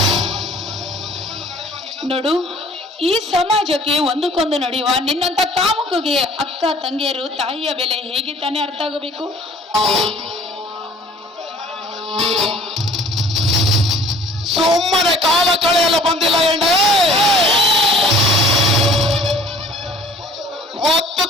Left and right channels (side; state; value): both; normal; correlation 0.52